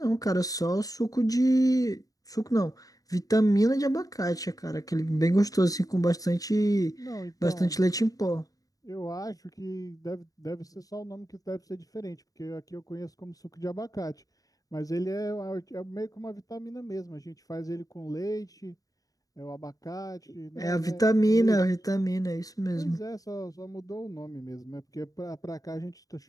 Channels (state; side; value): late; right; 0.17 ms